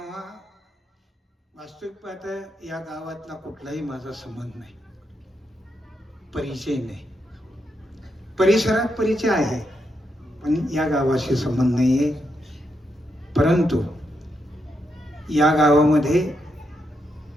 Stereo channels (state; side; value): normal; both; correlation 0.82